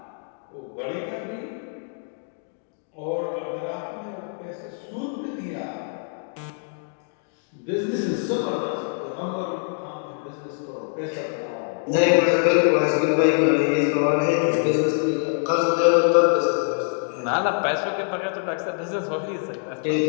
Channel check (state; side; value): silent; right; 62 dB below the other